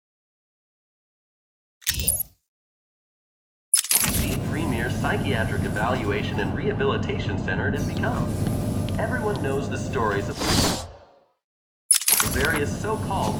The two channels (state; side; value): identical; both; correlation 1.00